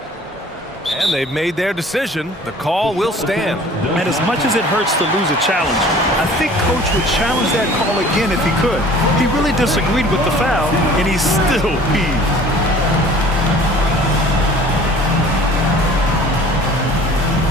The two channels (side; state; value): both; normal; correlation 0.48